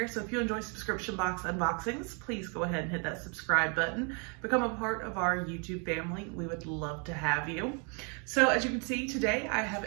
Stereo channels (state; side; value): quieter; left; 36.1 dB